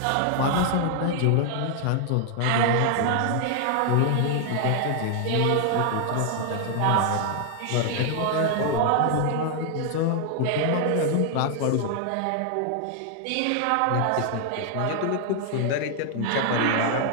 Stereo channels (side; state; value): both; different; correlation 0.00